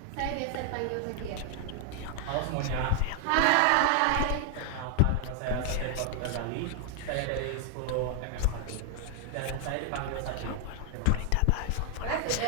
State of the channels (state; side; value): different; both; correlation 0.00